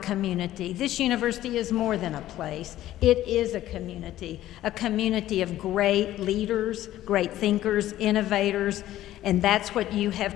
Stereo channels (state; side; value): quieter; right; 13.9 dB